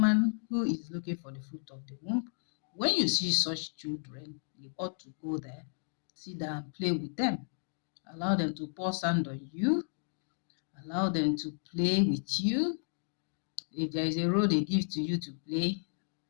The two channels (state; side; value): silent; right; digital silence